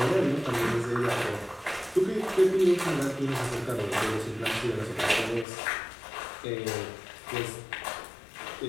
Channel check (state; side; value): drops out; right; at 5.5 s